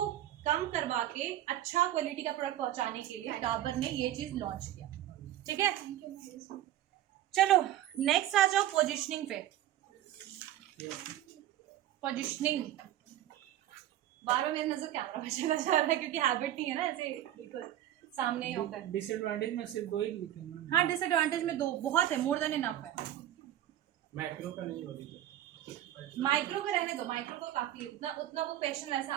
कम करवा के अच्छा क्वालिटी का प्रोडक्ट पहुंचाने के लिए डाबर ने ये चीज लॉन्च किया। ठीक है, चलो नेक्स्ट आ जाओ पोजिशनिंग पे। पोजिशनिंग बार मेरी नजर कैमरा पे चला जा रहा है क्योंकि हैबिट नहीं है ना ऐसे बिल्कुल सामने होता है। डिसएडवांटेज में सिर्फ 2 ही लिखेंगे। हाँ, डिसएडवांटेज में 2 बहुत है, मोर देन इनफ है। माइक्रो का नहीं होगी, माइक्रो का रहने दो, माइक्रो को काफी उतना वो क्वेश्चन वैसा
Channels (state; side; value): quieter; left; 12.8 dB